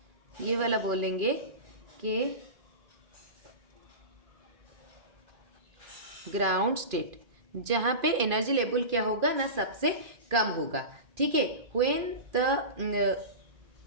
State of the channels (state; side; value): late; left; 2.5 ms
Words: ये वाला बोलेंगे कि ग्राउंड स्टेट, जहाँ पे एनर्जी लेवल क्या होगा ना सबसे कम होगा, ठीक है।